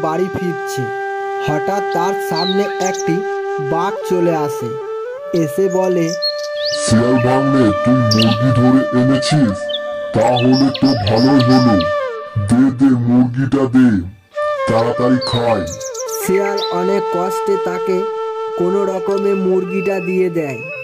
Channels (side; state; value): both; identical; correlation 1.00